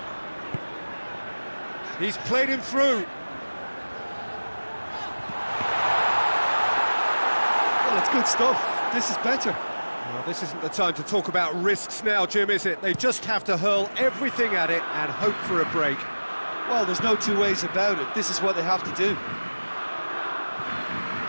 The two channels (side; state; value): both; inverted; correlation -1.00